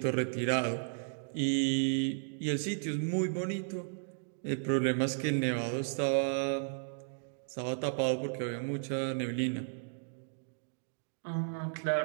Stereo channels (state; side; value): silent; left; digital silence